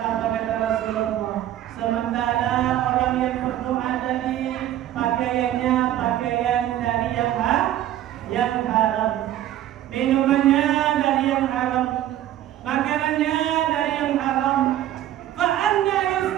kata Rasulullah? Sementara orang yang berdoa tadi pakaiannya pakaian dari yang haram, minumannya dari yang haram, makanannya dari yang haram. Fa'anna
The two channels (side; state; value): left; quieter; 12.6 dB